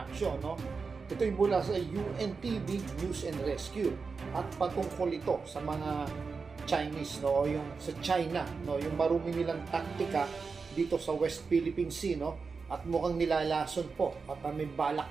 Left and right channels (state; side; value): quieter; left; 4.8 dB